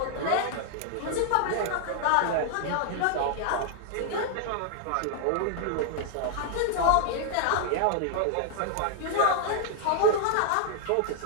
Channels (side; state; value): both; different; correlation 0.00